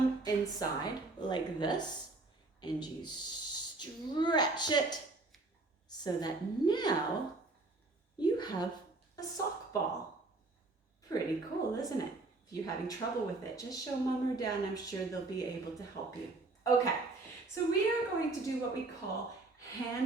inside like this, and you stretch it so that now you have a sock ball. Pretty cool, isn't it? If you're having trouble with it, just show Mom or Dad, and I'm sure they'll be able to help you. Okay, so we are going to do what we call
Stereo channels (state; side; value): quieter; left; 3.3 dB